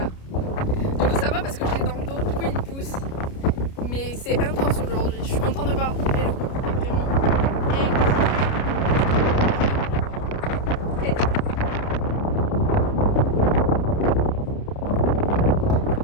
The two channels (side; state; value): right; late; 29 ms